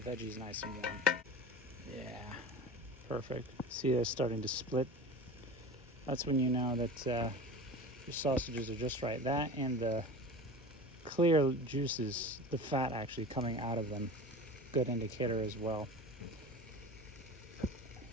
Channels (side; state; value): both; normal; correlation 0.33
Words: nice and warm. Yeah, perfect. See, they're starting to split. That's when you know that your sausages are just right. That and the clear juices, the fat actually coming out of them, good indicator as well.